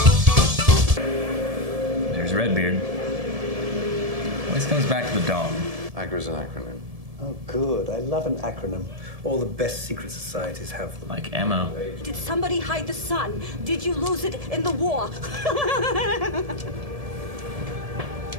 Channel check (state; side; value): late; left; 1.7 ms